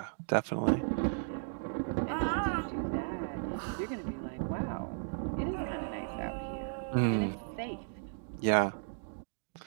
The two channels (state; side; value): silent; left; digital silence